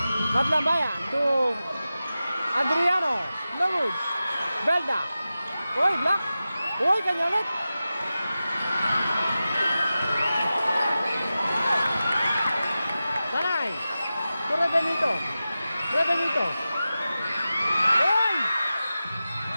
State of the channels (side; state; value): both; inverted; correlation -0.94